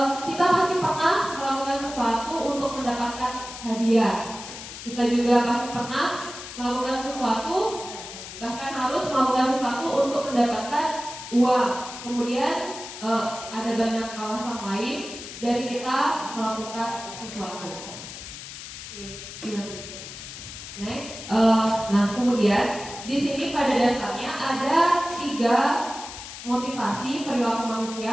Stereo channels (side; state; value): left; noise; hiss, 11 dB below the sound